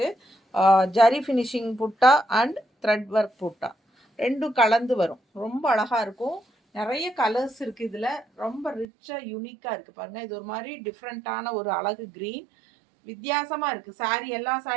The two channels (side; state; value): left; drops out; at 8.8 s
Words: zari finishing butta and thread work butta ரெண்டும் கலந்து வரும். ரொம்ப அழகாக இருக்கும். நிறைய கலர்ஸ் இருக்குது இதில். ரொம்ப ரிச்சாக யூனிக்காக இருக்குது பாருங்கள். இது ஒரு மாதிரி டிஃப்ரெண்ட்டான ஒரு அழகு க்ரீன் வித்தியாசமாக இருக்குது. சாரீ எல்லா